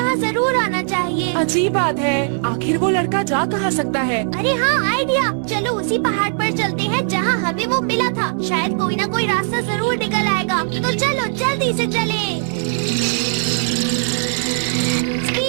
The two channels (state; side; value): silent; left; digital silence